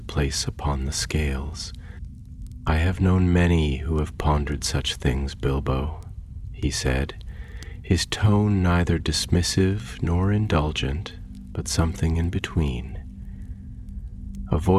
upon the scales. "I have known many who have pondered such things, Bilbo," he said, his tone neither dismissive nor indulgent, but something in between. A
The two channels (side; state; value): both; identical; correlation 1.00